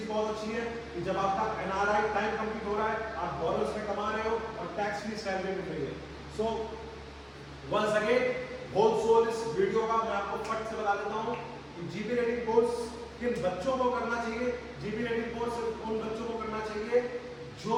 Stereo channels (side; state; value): both; identical; correlation 1.00